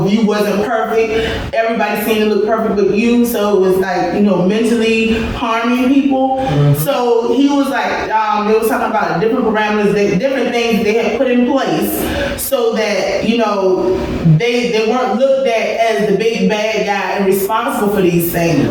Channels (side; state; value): both; identical; correlation 1.00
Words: if you wasn't perfect, everybody seemed to look perfect but you. So it was like, mentally harming people. Mm-hmm. So he was like, they was talking about different parameters, different things they had put in place so that, they weren't looked at as the big bad guy and responsible for these